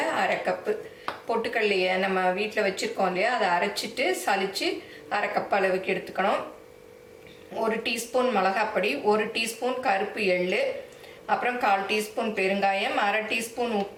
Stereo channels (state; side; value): identical; both; correlation 1.00